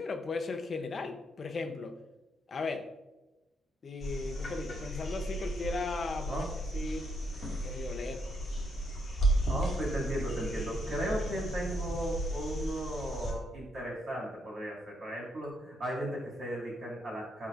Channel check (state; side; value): normal; both; correlation 0.76